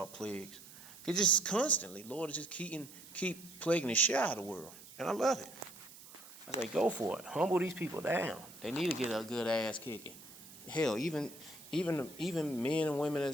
plagues. It's just constantly, Lord is just keep plaguing the shit out of the world. And I love it. I say, go for it. Humble these people down. They need to get a good ass kicking. Hell, even men and women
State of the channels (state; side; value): noise; right; hiss, 18 dB below the sound